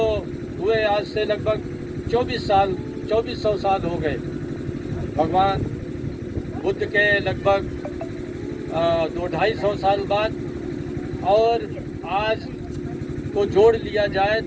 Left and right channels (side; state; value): both; identical; correlation 1.00